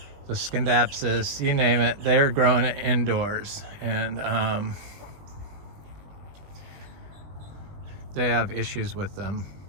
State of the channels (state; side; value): late; left; 20 ms